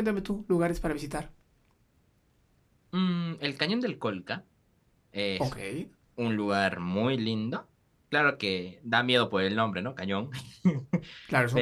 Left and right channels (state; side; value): identical; both; correlation 1.00